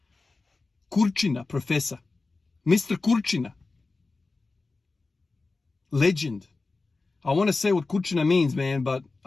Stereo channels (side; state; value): right; quieter; 3.7 dB